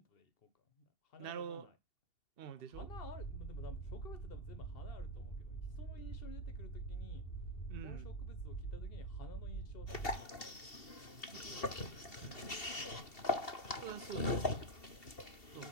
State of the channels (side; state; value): right; late; 2.7 ms